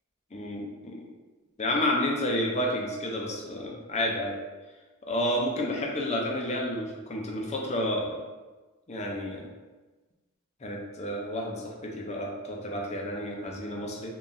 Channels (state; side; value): normal; both; correlation 0.15